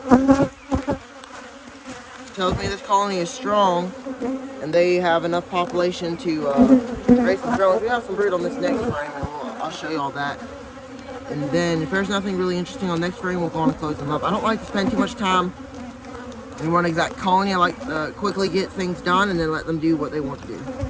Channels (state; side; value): identical; both; correlation 1.00